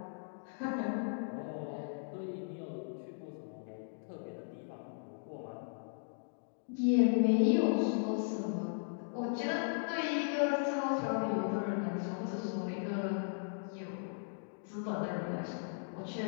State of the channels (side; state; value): right; silent; digital silence